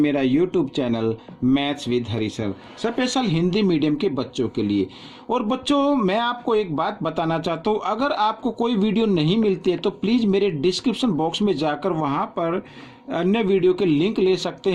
YouTube channel maths with Hari sir, special Hindi medium के बच्चों के लिए। और बच्चों मैं आपको एक बात बताना चाहता हूं, अगर आपको कोई वीडियो नहीं मिलती है तो प्लीज़ मेरे डिस्क्रिप्शन बॉक्स में जाकर वहां पर अन्य वीडियो के लिंक ले सकते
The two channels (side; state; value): both; identical; correlation 1.00